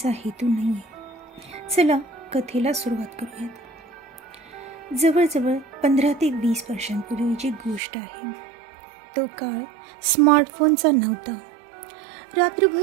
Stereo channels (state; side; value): drops out; left; at 7.8 s